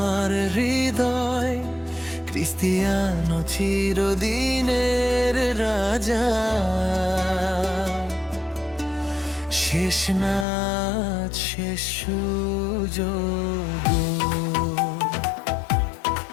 হৃদয়, ক্রিস্টিয়ানো চিরদিনের রাজা। শেষ নাচ শেষ সুযোগ,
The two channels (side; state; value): right; drops out; at 10.5 s